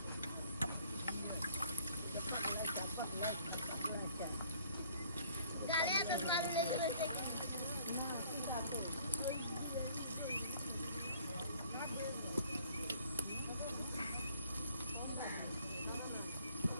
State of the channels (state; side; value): inverted; both; correlation -0.58